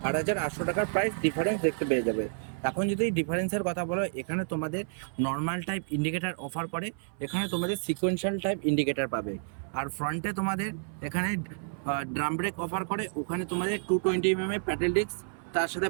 8,800 টাকার প্রাইস ডিফারেন্স দেখতে পেয়ে যাবে। এখন যদি ডিফারেন্সের কথা বলো, এখানে তোমাদের নর্মাল টাইপ ইন্ডিকেটার অফার করে, এখানে তোমাদের সিকোয়েন্সিয়াল টাইপ ইন্ডিকেটার পাবে। আর ফ্রন্টে তোমাদের এখানে ড্রাম ব্রেক অফার করে, ওখানে তোমাদের 220 mm প্যাডেল ডিস্ক, তার সাথে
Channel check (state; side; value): silent; left; 58 dB below the other